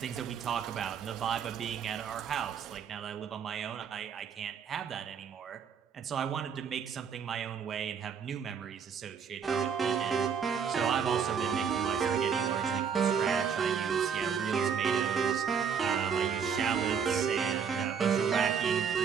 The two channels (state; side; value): quieter; left; 7.0 dB